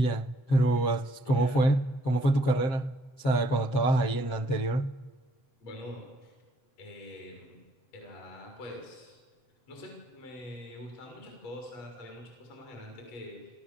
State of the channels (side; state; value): right; late; 7.5 ms